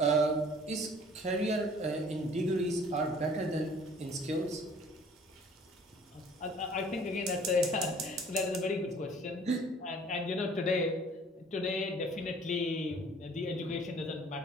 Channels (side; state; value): both; normal; correlation 0.53